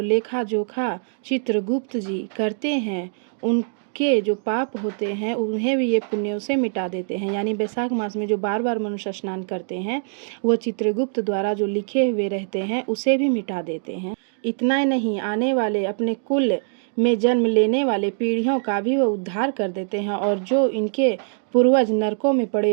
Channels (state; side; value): silent; left; digital silence